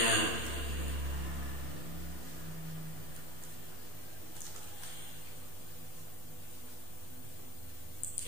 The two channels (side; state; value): right; late; 12 ms